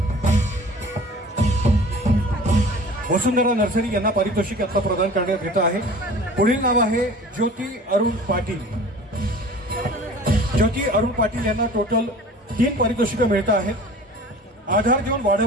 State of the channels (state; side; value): normal; both; correlation 0.43